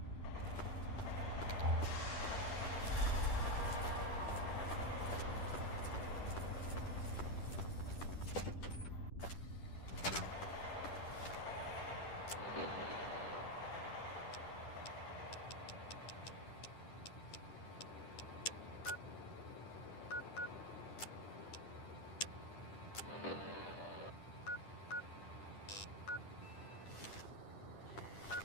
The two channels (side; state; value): right; late; 10 ms